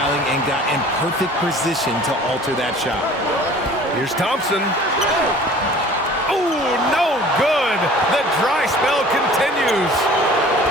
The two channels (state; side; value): normal; both; correlation 0.47